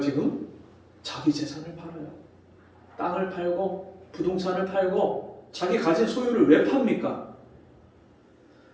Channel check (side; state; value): both; identical; correlation 1.00